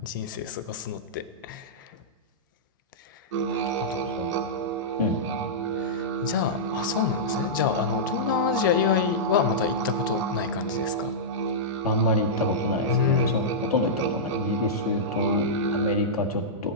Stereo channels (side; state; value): both; normal; correlation -0.13